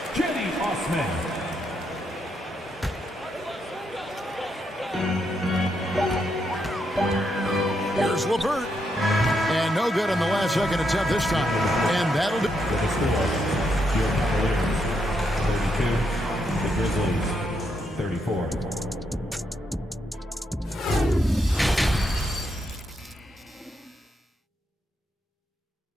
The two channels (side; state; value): both; normal; correlation 0.80